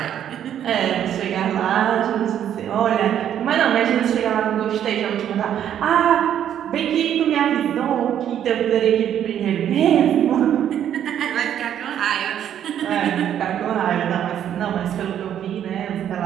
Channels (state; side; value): quieter; left; 10.0 dB